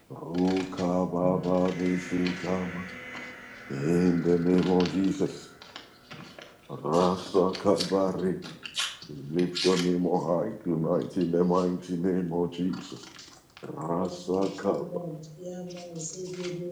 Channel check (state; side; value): identical; both; correlation 1.00